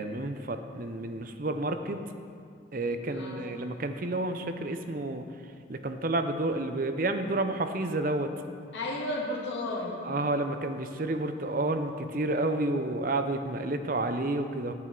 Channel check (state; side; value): normal; both; correlation 0.26